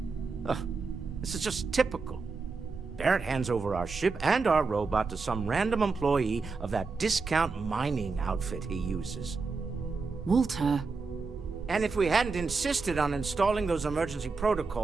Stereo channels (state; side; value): quieter; left; 4.4 dB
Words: This is just typical. Barrett hands over our ship and our robot to some random employee of that discount mining outfit he uses. Walter. And if we hadn't insisted on installing those emergency